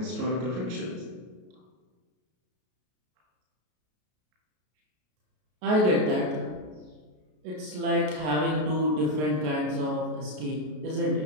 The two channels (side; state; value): left; late; 33 ms